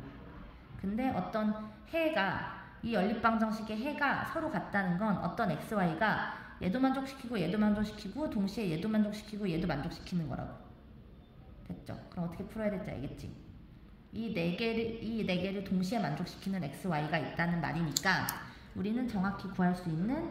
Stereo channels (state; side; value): identical; both; correlation 1.00